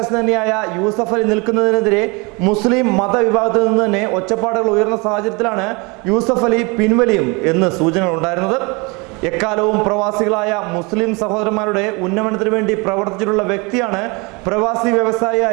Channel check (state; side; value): quieter; left; 28.5 dB